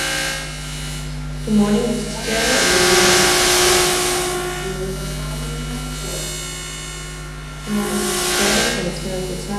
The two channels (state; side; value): identical; both; correlation 1.00